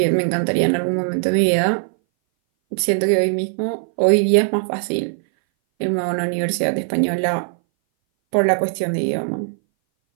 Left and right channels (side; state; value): left; silent; 60 dB below the other